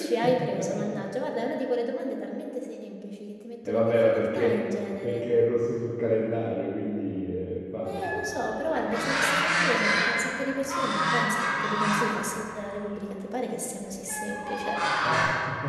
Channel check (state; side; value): identical; both; correlation 1.00